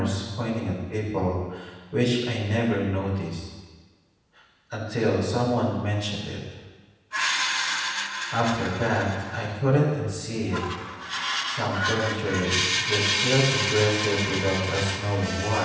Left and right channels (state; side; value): identical; both; correlation 1.00